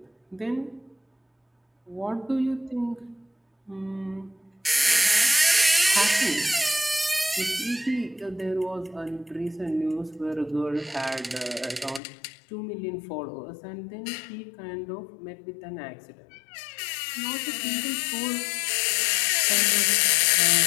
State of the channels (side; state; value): right; drops out; at 12.0 s